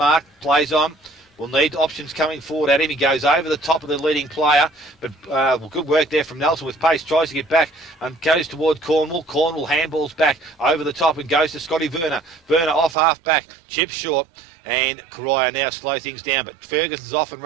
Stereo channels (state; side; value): drops out; left; at 13.0 s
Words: plays on. Will need options coming forward at him. He goes over the top of the leading player, but good work there from Nelson with pace. Tries to get back and goes towards Cornwall. Cornwall handballs back over the top and goes to Scotty Werner. Werner off half back, chips short. And Corio now slow things down, but Ferguson's off and